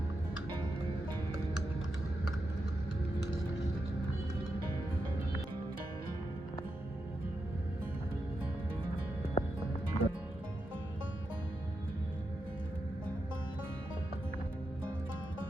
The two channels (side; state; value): both; normal; correlation 0.87